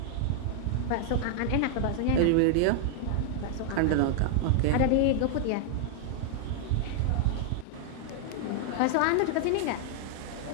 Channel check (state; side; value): different; both; correlation 0.00